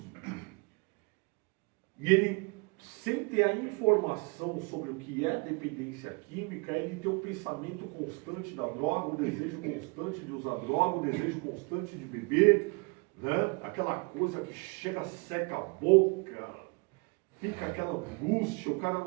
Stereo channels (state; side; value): quieter; left; 32.1 dB